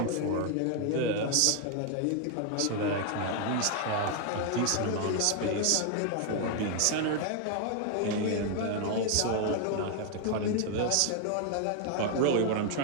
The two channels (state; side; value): different; both; correlation 0.00